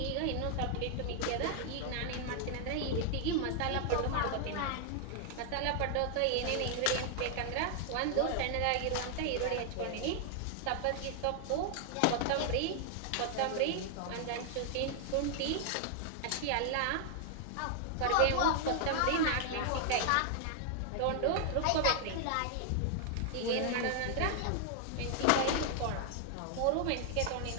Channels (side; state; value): both; different; correlation 0.00